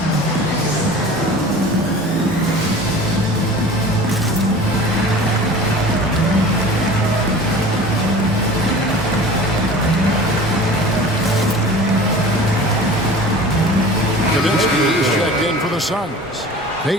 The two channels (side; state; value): both; normal; correlation 0.40